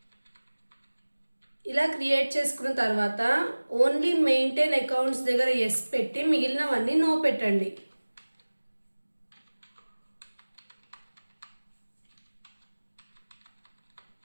ఇలా క్రియేట్ చేసుకున్న తర్వాత ఓన్లీ మెయింటైన్ అకౌంట్స్ దగ్గర ఎస్ పెట్టి మిగిలినవన్నీ నో పెట్టండి.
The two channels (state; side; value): inverted; both; correlation -1.00